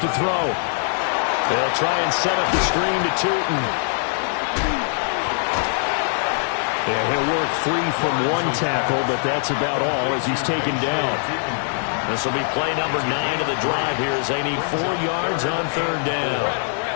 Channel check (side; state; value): right; silent; digital silence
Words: to throw. They'll try and set up the screen to Tootin. Yeah, he'll work free from one tackle, but that's about all as he's taken down. This will be play number 9 of the drive here as they need 4 yards on 3rd down.